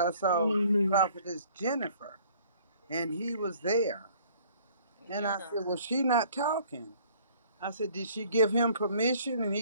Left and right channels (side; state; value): both; inverted; correlation -0.56